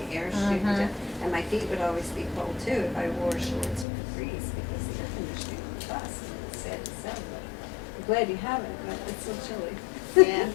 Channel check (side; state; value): right; drops out; at 3.9 s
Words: air shooting Mhm. down, and my feet would always be cold too if I wore shorts or capris because the air conditioning on the bus. It's sad to say, but I'm glad you have it, but it's so chilly. Yeah.